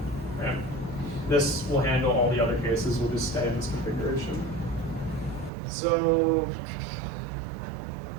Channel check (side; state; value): left; drops out; at 5.5 s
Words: right? This will handle all the other cases, we'll just stay in this configuration. So,